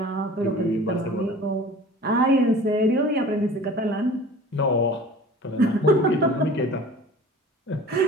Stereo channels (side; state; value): both; normal; correlation 0.43